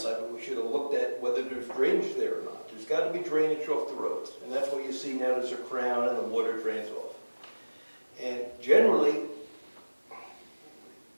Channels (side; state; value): both; inverted; correlation -1.00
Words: we should have looked at whether there's drainage there or not. There's got to be drainage off the roads, and that's what you see now. There's a crown and the water drains off. And generally,